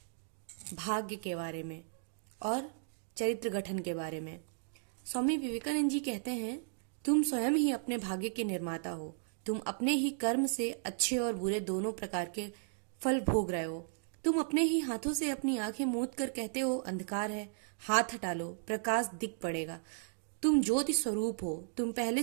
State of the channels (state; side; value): silent; left; digital silence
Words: भाग्य के बारे में और चरित्र गठन के बारे में। स्वामी विवेकानंद जी कहते हैं, तुम स्वयं ही अपने भाग्य के निर्माता हो। तुम अपने ही कर्म से अच्छे और बुरे दोनों प्रकार के फल भोग रहे हो। तुम अपने ही हाथों से अपनी आंखें मूंद कर कहते हो अंधकार है, हाथ हटा लो, प्रकाश दिख पड़ेगा। तुम ज्योति स्वरूप हो, तुम पहले